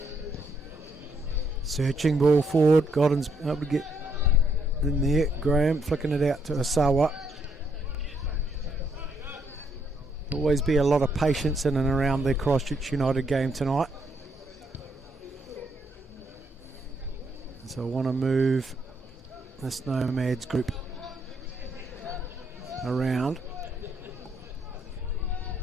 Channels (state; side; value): normal; both; correlation 0.73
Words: Searching ball forward, Godden's able to get in there. Graham flicking it out to Asawa. Always be a lot of patience in and around the Christchurch United game tonight. So I want to move this Nomads group around.